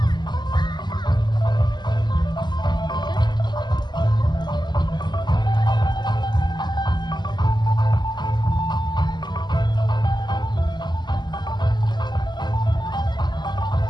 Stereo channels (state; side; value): late; right; 0.21 ms